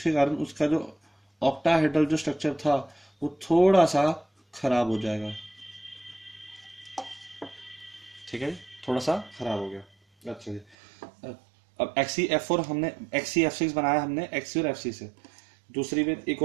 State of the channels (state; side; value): drops out; left; at 10.8 s